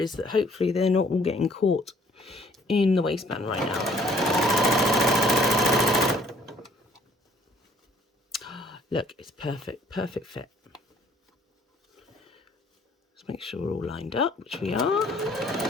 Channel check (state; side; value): normal; both; correlation 0.60